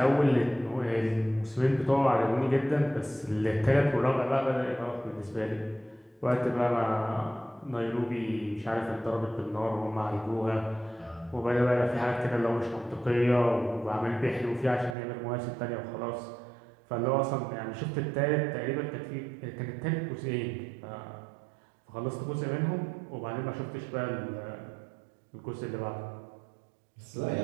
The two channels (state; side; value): drops out; left; at 15.0 s